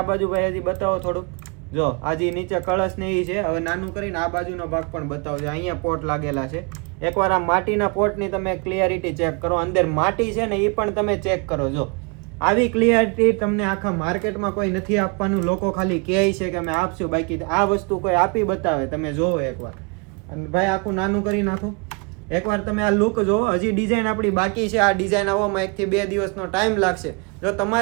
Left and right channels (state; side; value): quieter; left; 32.6 dB